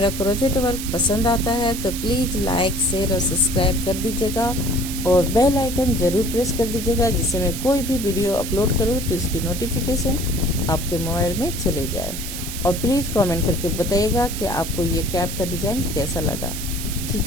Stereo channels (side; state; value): right; noise; hiss, 8 dB below the sound